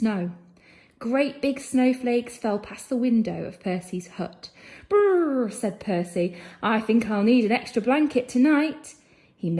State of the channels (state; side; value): identical; both; correlation 1.00